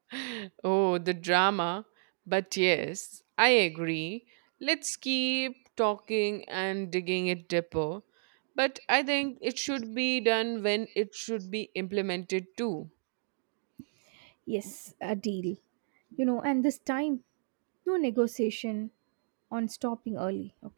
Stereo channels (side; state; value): left; silent; digital silence